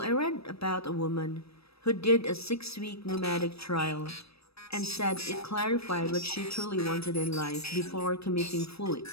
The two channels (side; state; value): right; late; 0.78 ms